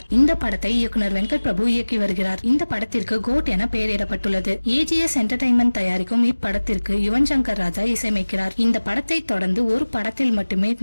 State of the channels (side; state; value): both; inverted; correlation -1.00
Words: இந்த படத்தை இயக்குனர் வெங்கட் பிரபு இயக்கி வருகிறார். இந்த படத்திற்கு கோட் என பெயரிடப்பட்டுள்ளது. AGS என்டர்டைன்மெண்ட் தயாரிக்கும் இப்படத்திற்கு யுவன் சங்கர் ராஜா இசையமைக்கிறார். இந்த படத்தை தொடர்ந்து ஒரு படத்தில் மட்டுமே